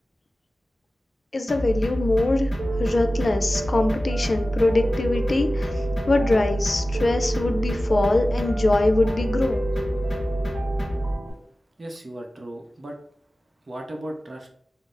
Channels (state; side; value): normal; both; correlation 0.96